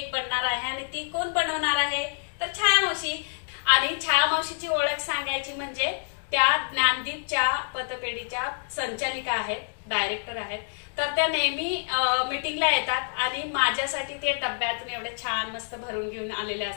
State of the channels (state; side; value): silent; right; digital silence